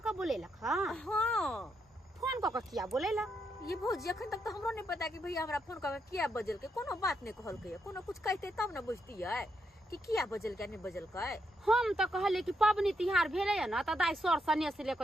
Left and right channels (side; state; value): both; normal; correlation 0.79